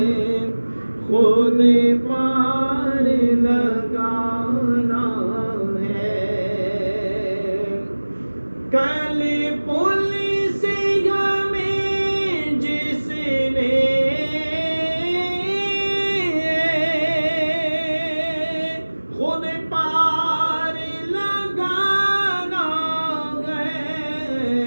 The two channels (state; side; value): inverted; both; correlation -1.00